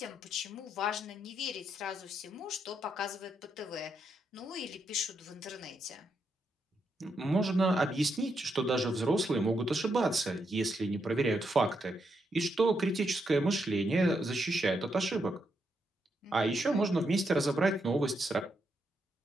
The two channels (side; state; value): both; normal; correlation 0.80